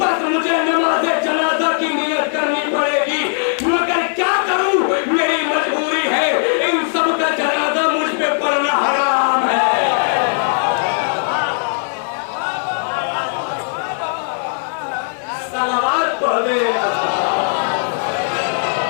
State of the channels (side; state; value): right; silent; digital silence